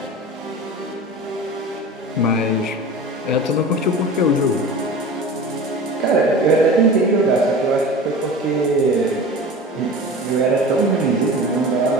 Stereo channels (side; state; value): both; normal; correlation 0.35